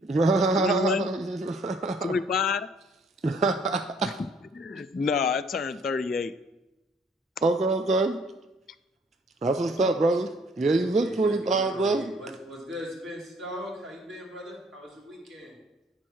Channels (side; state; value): both; normal; correlation 0.61